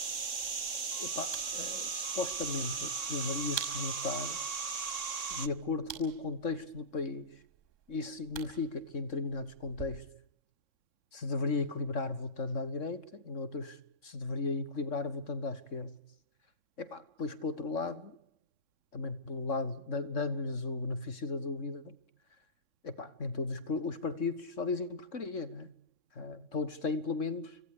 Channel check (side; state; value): right; late; 3.6 ms